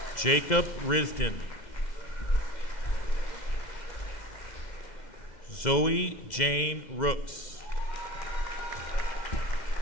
Jacob Risden. Zoe Jane Rooks.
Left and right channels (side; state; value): right; late; 2.1 ms